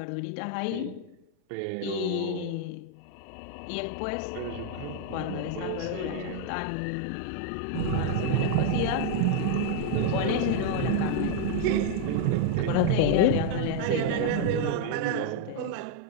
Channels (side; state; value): both; different; correlation 0.00